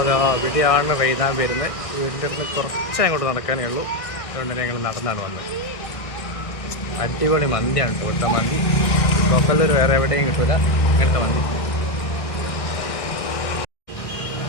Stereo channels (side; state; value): right; late; 1.6 ms